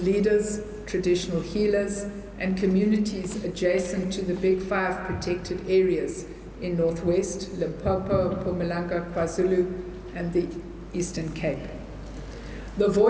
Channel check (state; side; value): identical; both; correlation 1.00